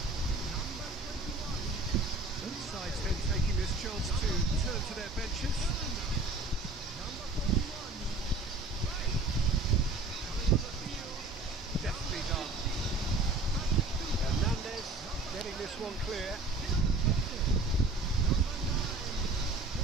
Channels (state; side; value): quieter; left; 3.1 dB